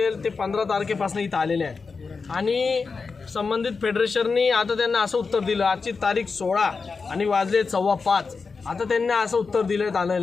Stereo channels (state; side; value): quieter; right; 4.7 dB